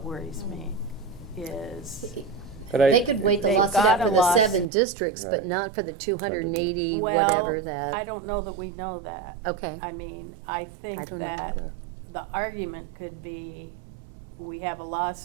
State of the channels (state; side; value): drops out; left; at 4.7 s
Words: worries me, is they could wait the they've lawsuit got out a for the loss- 7 districts, but Right. not for the 280, Well, whatever that. I don't know that we know that. Okay. I mean, I I think don't know that either. the argument could be, we have a